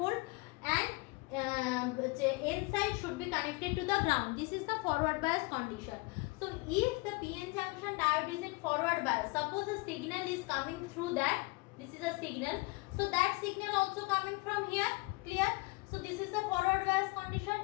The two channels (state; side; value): quieter; right; 25.5 dB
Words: and N side should be connected to the ground. This is the forward bias condition. So if the PN junction diode is in forward bias, suppose a signal is coming through that, this is a signal. So that signal also coming from here. Clear? So this is the forward bias condition.